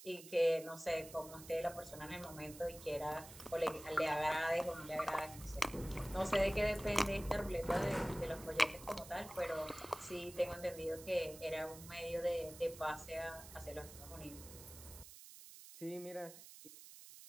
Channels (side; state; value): right; noise; hiss, 16 dB below the sound